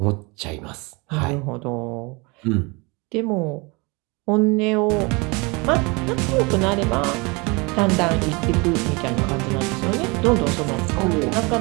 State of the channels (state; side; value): quieter; left; 27.6 dB